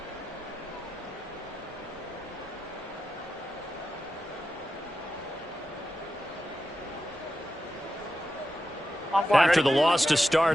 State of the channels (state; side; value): normal; both; correlation 0.90